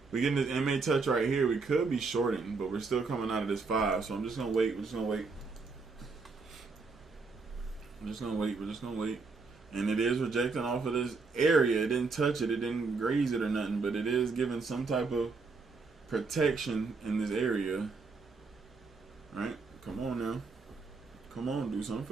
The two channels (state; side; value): quieter; left; 4.3 dB